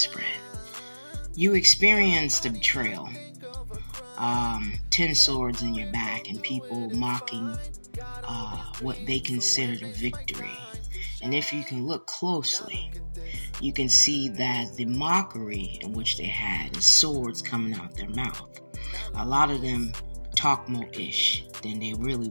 You experienced a betrayal. 10 swords in your back and people mocking what they considered a victory. And if you can look closely, you can see that the mockery in which they had is swords coming out their mouth. A lot of them talk more ish than they really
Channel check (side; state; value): both; inverted; correlation -1.00